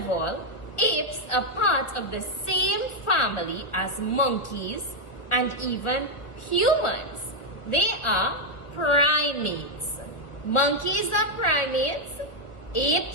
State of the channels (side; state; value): right; late; 1.4 ms